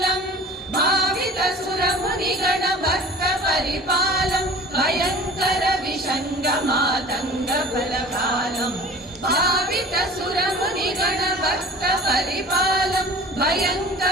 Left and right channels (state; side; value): normal; both; correlation 0.44